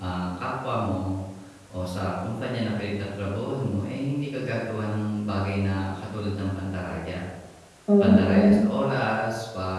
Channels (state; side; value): identical; both; correlation 1.00